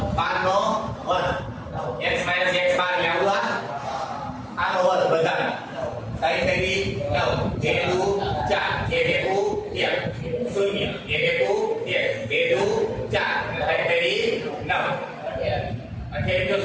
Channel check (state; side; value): identical; both; correlation 1.00